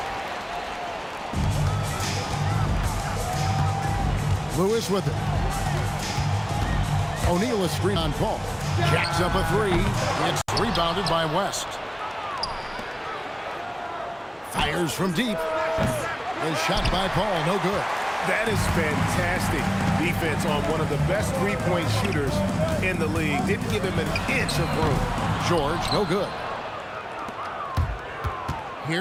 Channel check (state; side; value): identical; both; correlation 1.00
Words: Lewis with it. O'Neal is screen on Paul. Jacks up a 3. It's rebounded by West. Fires from deep. A shot by Paul, no good. That is fantastic defense on one of the best three-point shooters in the league. Didn't give him an inch of room. George, no good.